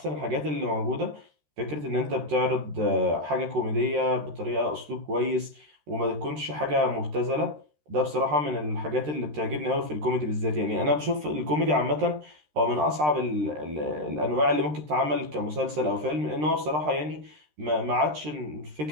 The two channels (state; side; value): late; left; 13 ms